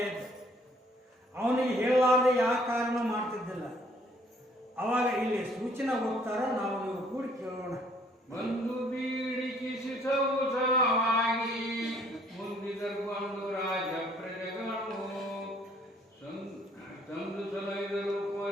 ಇದ್ದ. ಅವನಿಗೆ ಹೇಳಲಾರ್ದೆ ಯಾವ ಕಾರಣ ಮಾಡ್ತಿದ್ದಿಲ್ಲ. ಅವಾಗ ಇಲ್ಲಿ ಸೂಚನೆ ಹೋಗ್ತಾರ, ನಾವು ನೀವು ಕೂಡಿ ಕೇಳೋಣ. ಬಂದು ಬೀಡಿಕಿಸಿಸವಾಗಿ ಮುಂದಿದರ್ಕೊಂಡು ರಾಜ ಪ್ರಜೆಗಳನ್ನು ತಂದು ಸಲಹಿದರು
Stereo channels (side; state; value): both; normal; correlation 0.62